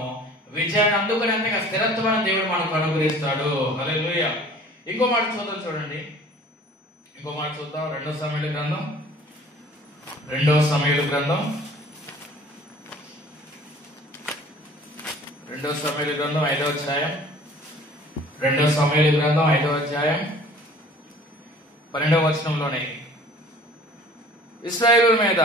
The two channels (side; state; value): both; normal; correlation 0.49